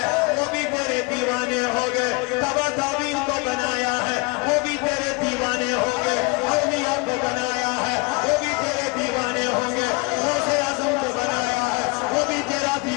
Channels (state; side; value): quieter; right; 27.6 dB